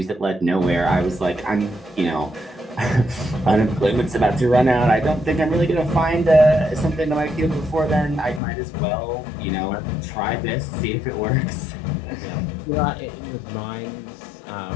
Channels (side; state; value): right; drops out; at 8.4 s